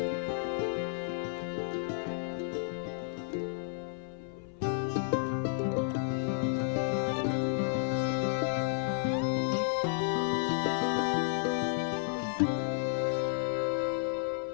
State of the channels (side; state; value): right; silent; 56 dB below the other